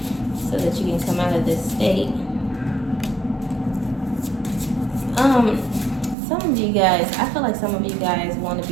so that you can come out of this state. Some of you guys, I feel like some of you guys want to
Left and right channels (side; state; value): left; drops out; at 6.2 s